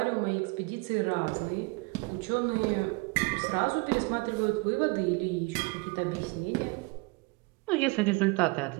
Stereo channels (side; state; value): left; quieter; 26.6 dB